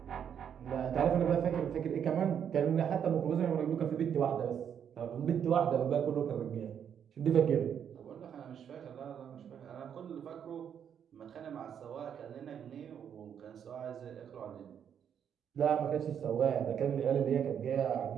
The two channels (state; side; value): quieter; left; 8.4 dB